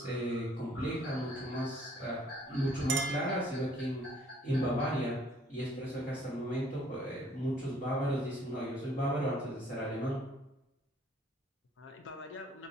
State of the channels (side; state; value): both; normal; correlation 0.60